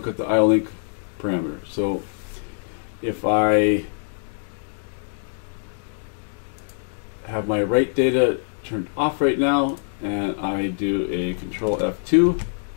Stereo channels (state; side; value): silent; right; digital silence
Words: at the IO-Link parameter. So if I have my write data turned off right now and I do a control F2,